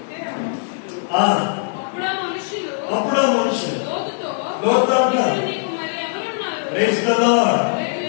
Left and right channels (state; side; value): silent; right; digital silence